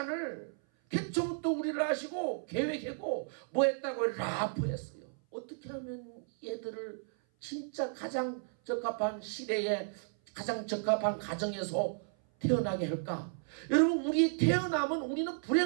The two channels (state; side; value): silent; left; 55 dB below the other